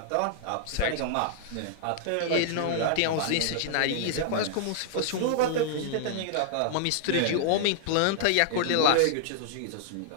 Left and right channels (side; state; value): both; different; correlation -0.01